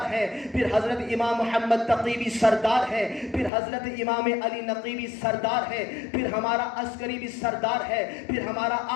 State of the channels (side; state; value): right; drops out; at 3.5 s